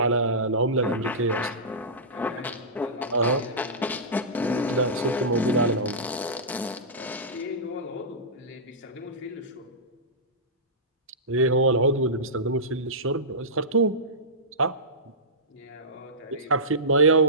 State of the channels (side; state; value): both; normal; correlation -0.17